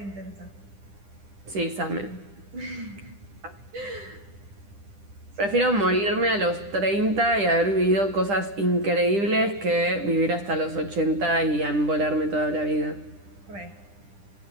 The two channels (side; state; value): left; late; 10 ms